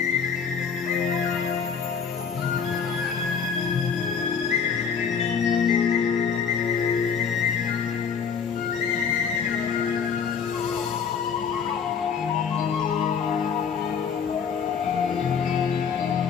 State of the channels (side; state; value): right; quieter; 6.6 dB